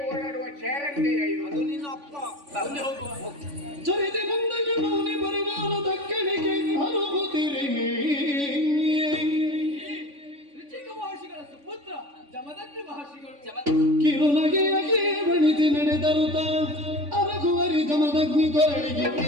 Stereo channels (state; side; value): late; left; 3.5 ms